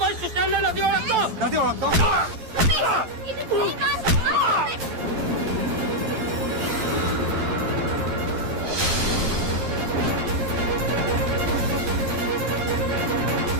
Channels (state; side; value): late; left; 11 ms